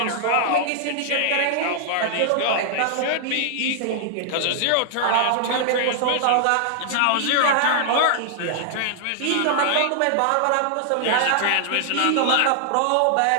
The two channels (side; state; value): both; different; correlation -0.01